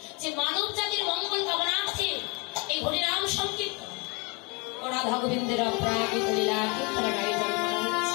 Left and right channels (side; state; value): right; quieter; 30.0 dB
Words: যে মানব জাতির মঙ্গল কামনার্থে এই হরিনাম সংকীর্তন ও রাধা গোবিন্দের অপ্রাকৃত লীলা কীর্তনের আয়োজন করা